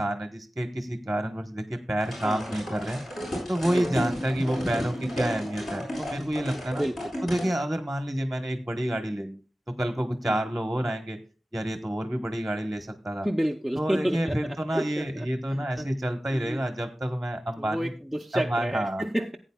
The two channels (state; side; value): normal; both; correlation 0.95